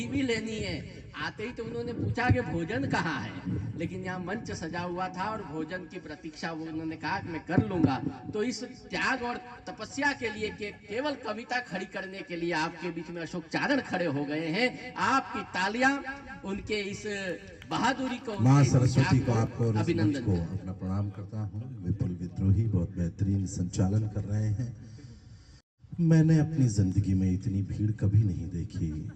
भी लेनी है। आते ही तो उन्होंने पूछा कि भोजन कहाँ है, लेकिन यहाँ मंच सजा हुआ था और भोजन की प्रतीक्षा वो उन्होंने कहा कि मैं कर लूंगा। तो इस त्याग और तपस्या के लिए कि केवल कविता खड़ी करने के लिए आपके बीच में अशोक चारण खड़े हो गए हैं। आपकी तालियां उनके इस बहादुरी को, माँ सरस्वती को, आपको अभिनंदन को अपना प्रणाम करता हूँ। विपुल विद्रोही बहुत बेहतरीन संचालन कर रहे हैं। मैंने अपनी जिंदगी में इतनी भीड़ कभी नहीं देखी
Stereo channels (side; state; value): both; identical; correlation 1.00